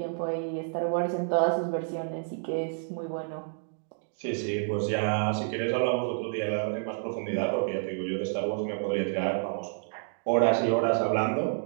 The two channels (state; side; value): silent; left; digital silence